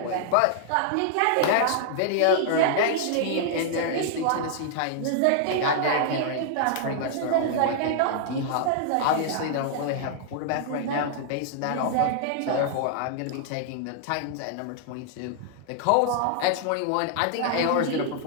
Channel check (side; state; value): both; different; correlation -0.01